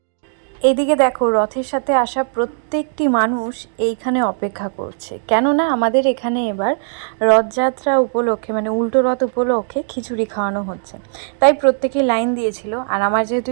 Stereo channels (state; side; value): silent; left; digital silence